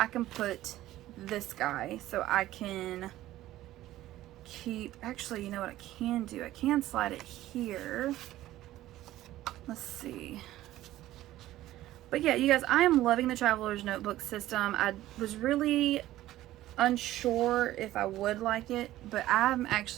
can put this guy so I can keep, actually, you know what I can do? I can slide it here. Let's see. But yeah, you guys, I am loving the Traveler's Notebook system. I was really unsure if I would like it, but I'm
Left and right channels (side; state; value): left; quieter; 14.9 dB